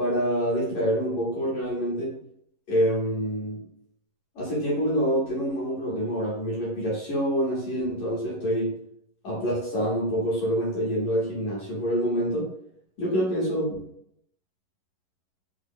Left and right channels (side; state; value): right; late; 11 ms